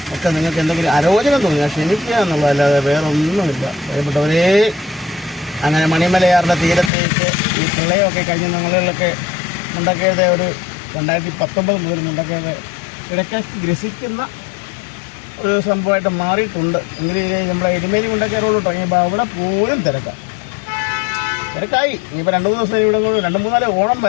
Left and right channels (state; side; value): drops out; right; at 6.9 s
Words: ഒക്കെ നിങ്ങൾക്ക് എന്തെങ്കിലും അരോചനം തോന്നിയാൽ ക്ഷമിക്കുക എന്നുള്ളതല്ലാതെ വേറെ ഒന്നുമില്ല. പ്രിയപ്പെട്ടവരേ, അങ്ങനെ മണിമലയാറിൻ്റെ തീരത്തേക്ക് ഈ പ്രളയമൊക്കെ കഴിഞ്ഞ നാളുകളിലൊക്കെ മുണ്ടക്കയത്തെ ഒരു 2019 മുതൽ മുണ്ടക്കയത്തെ ഇടയ്ക്ക് ഗ്രസിക്കുന്ന ഒരു സംഭവമായിട്ട് മാറിയിട്ടുണ്ട്. എങ്കിലും നമ്മുടെ എരുമേലി മുണ്ടക്കയ റോഡ് തുടങ്ങിയപ്പോൾ അവിടെ പോലും തിരക്കായി. ഇനിയിപ്പോൾ 2-3 ദിവസം ഇവിടെ 2-3 ഓണം